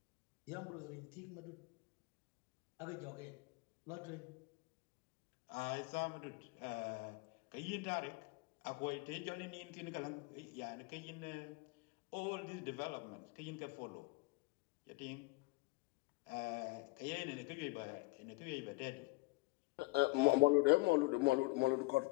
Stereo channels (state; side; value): quieter; right; 24.6 dB